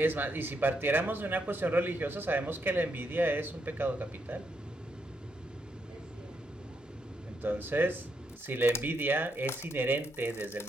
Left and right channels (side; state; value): both; normal; correlation 0.78